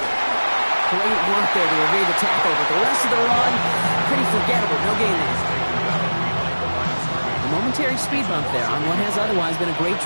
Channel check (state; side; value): inverted; both; correlation -1.00